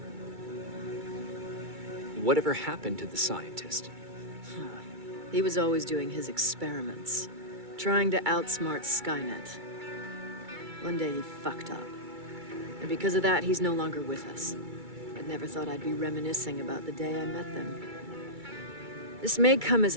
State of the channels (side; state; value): left; late; 2.3 ms